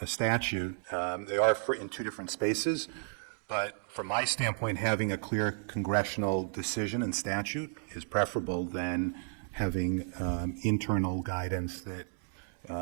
statute. They are in two different spaces, but from my standpoint, having a clear congressional decision and statute is preferable than having internal guidance that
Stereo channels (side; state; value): left; silent; 56 dB below the other